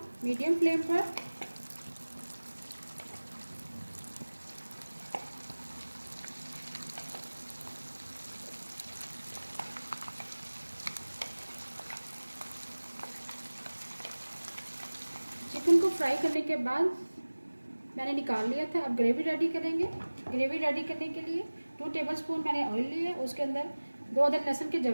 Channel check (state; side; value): inverted; both; correlation -1.00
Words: मीडियम फ्लेम पर। चिकन को फ्राई करने के बाद मैंने निकाल लिया था। अब ग्रेवी रेडी करेंगे। ग्रेवी रेडी करने के लिए 2 टेबलस्पून मैंने ऑयल लिया। उसके अंदर 2 अदद लहसुन के